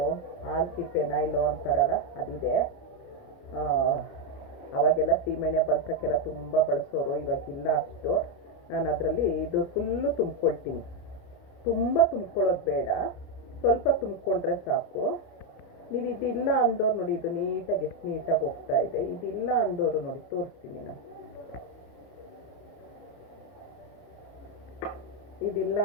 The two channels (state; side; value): late; right; 29 ms